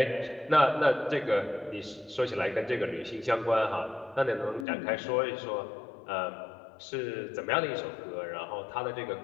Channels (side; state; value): right; drops out; at 4.7 s